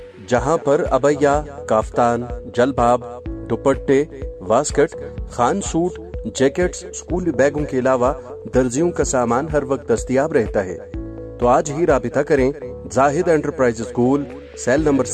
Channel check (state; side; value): identical; both; correlation 1.00